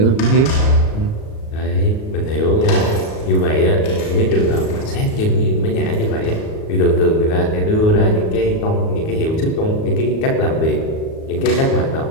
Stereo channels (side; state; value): right; late; 37 ms